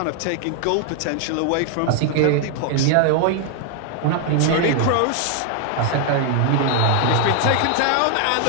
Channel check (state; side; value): different; both; correlation 0.00